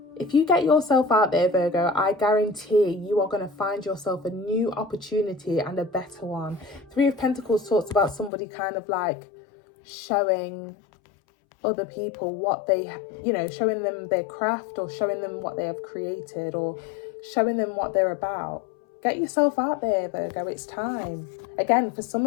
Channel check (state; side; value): drops out; right; at 8.3 s